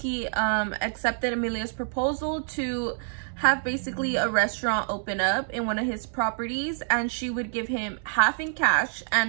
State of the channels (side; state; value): left; silent; 60 dB below the other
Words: accepted Amelia's proposal to have basically a restaurant open up in one of his properties, and she would give him half in cash